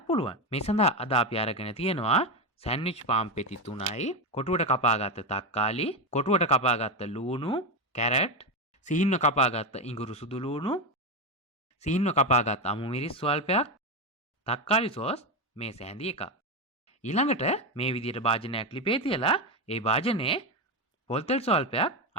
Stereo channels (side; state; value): both; normal; correlation 0.13